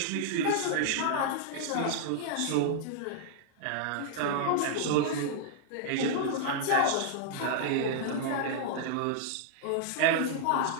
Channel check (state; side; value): different; both; correlation -0.01